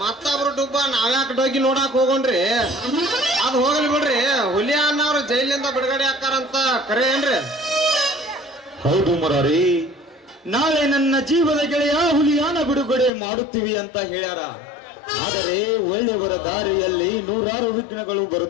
ಮತ್ತೊಬ್ರು ಡುಬ್ಬ ನಾವ್ಯಾಕೆ ಡೋಗಿ ನೋಡಾಕ್ ಹೋಗೋಣ್ರಿ ಅದ್ ಹೋಗ್ಲಿ ಬಿಡ್ರಿ ಹುಲಿ ಅನ್ನವ್ರು ಜೈಲಿಂದ ಬಿಡುಗಡೆ ಹಾಕಾರಂತ ಕರೆ ಏನ್ರಿ ಹೌದು ಮುರಾರಿ ನಾಳೆ ನನ್ನ ಜೀವದ ಗೆಳೆಯ ಹುಲಿಯಾನ ಬಿಡುಗಡೆ ಮಾಡುತ್ತೀವಿ ಅಂತ ಹೇಳ್ಯಾರ ಆದರೆ ಒಳ್ಳೆಯವರ ದಾರಿಯಲ್ಲಿ ನೂರಾರು ವಿಘ್ನಗಳು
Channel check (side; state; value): right; drops out; at 13.1 s